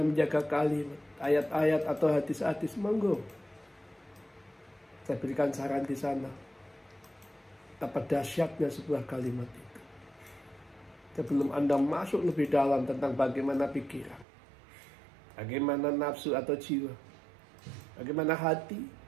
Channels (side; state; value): left; drops out; at 14.2 s